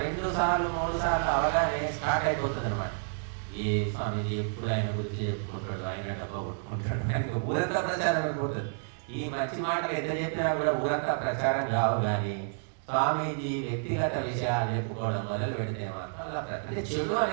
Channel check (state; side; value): silent; left; digital silence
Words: 2 సార్లు 3 సార్లు అవగానే స్టార్ట్ అయిపోతుంది అనమాట. ఏ స్వామీజీ ఎప్పుడు ఆయన గురించి చెప్పుకుంటాడు, ఆయన డబ్బా కొట్టుకుంటాడు, ఆయనకు ఊరంతా ప్రచారం అయిపోతుంది. ఈ మంచి మాటలు ఎంత చెప్పినా కూడా ఊరంతా ప్రచారం కావు. కానీ స్వామీజీ వ్యక్తిగత విషయాలు చెప్పుకోవడం మొదలు పెడితే మాత్రం అలా అంటే చెడు